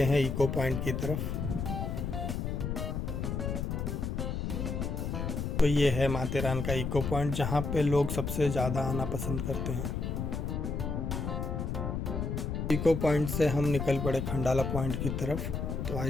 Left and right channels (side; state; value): left; noise; rumble, 2 dB below the sound